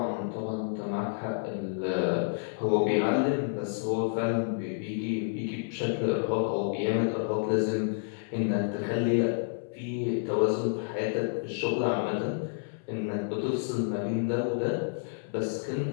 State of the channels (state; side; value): silent; right; 58 dB below the other